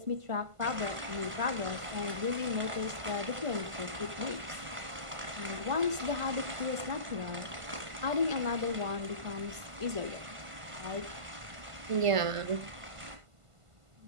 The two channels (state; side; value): late; left; 1.5 ms